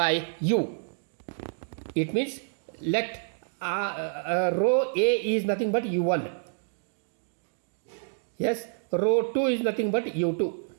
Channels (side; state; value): left; silent; digital silence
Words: u. It means let row A is nothing but u1. Yes, row 2 is nothing but u2.